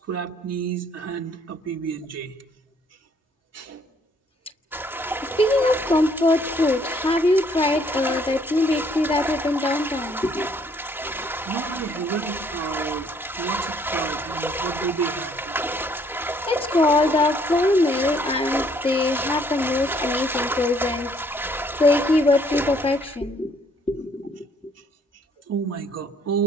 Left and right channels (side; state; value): both; normal; correlation 0.64